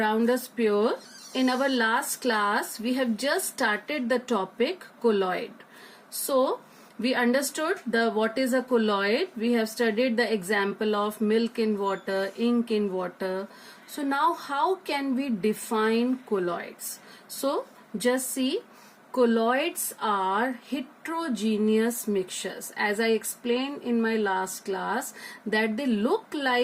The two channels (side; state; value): both; identical; correlation 1.00